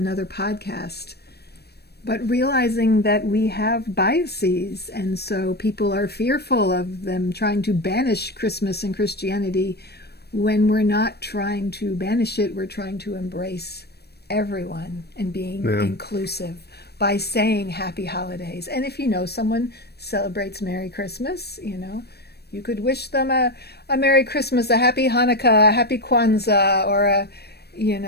podcast. But realizing that we have biases, and so people are fearful of them trying to banish Christmas and Christianity, when we're not trying to banish it, we're trying to embrace everyone and being inclusive by saying Happy Holidays. And if someone celebrates Merry Christmas, you could wish them a Merry Christmas, a Happy Hanukkah, a Happy Kwanzaa, or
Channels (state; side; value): late; right; 0.47 ms